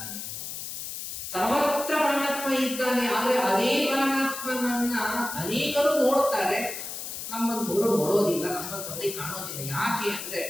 ಸರ್ವತ್ರ ಪರಮಾತ್ಮ ಇದ್ದಾನೆ. ಆದ್ರೆ ಅದೇ ಪರಮಾತ್ಮನನ್ನ ಅನೇಕರು ನೋಡುತ್ತಾರೆ, ನಮ್ಮಂತವರು ನೋಡೋದಿಲ್ಲ, ನಮ್ಮಂತವರಿಗೆ ಕಾಣೋದಿಲ್ಲ. ಯಾಕೆ ಅಂದ್ರೆ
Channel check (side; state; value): left; noise; hiss, 7 dB below the sound